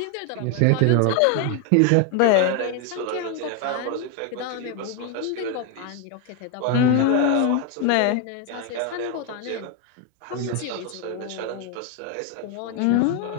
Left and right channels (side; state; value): both; different; correlation 0.01